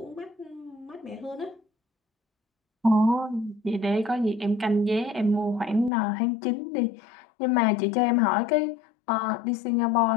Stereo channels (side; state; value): right; drops out; at 5.9 s